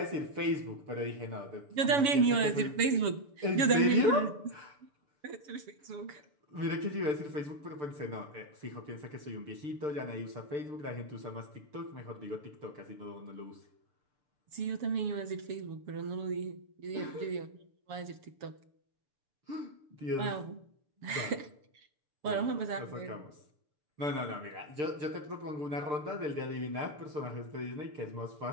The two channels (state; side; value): late; left; 7.1 ms